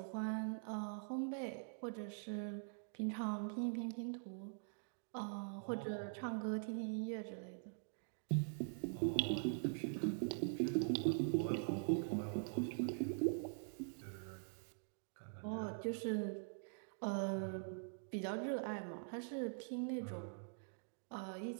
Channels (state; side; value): silent; left; digital silence